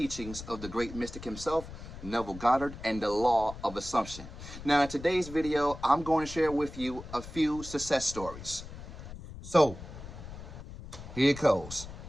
of the great mystic himself, Neville Goddard, and the law of assumption. Now in today's video, I'm going to share with you a few success stories. So, here it goes.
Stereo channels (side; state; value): left; noise; rumble, 12 dB below the sound